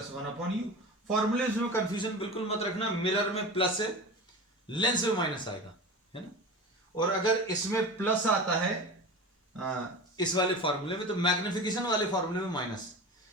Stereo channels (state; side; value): normal; both; correlation 0.31